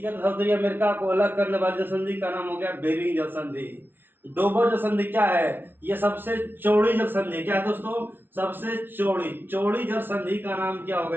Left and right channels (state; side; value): late; left; 0.099 ms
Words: America को अलग करने वाली जल संधि का नाम हो गया बेरिंग जल संधि। डोबर जल संधि क्या है? ये सबसे चौड़ी जल संधि क्या है दोस्तों? सबसे चौड़ी चौड़ी जल संधि का नाम क्या हो